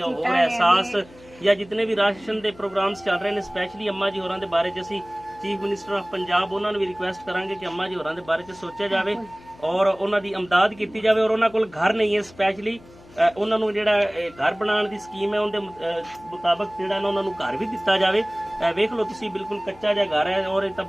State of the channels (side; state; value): left; noise; hum, 23 dB below the sound